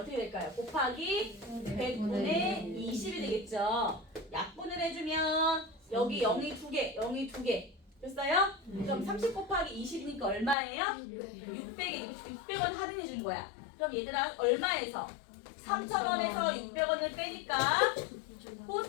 될까요? 곱하기 100분의 20이 되겠죠. 약분을 해주면 여기 0이 2개, 0이 2개. 됐어요? 그럼 30 곱하기 20이니까 얼마예요? 600이 600원 할인해 준 거야. 그럼 얘들아 얼마에서? 3,000원에서 600원을 빼니까 꽃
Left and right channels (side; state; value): right; drops out; at 10.6 s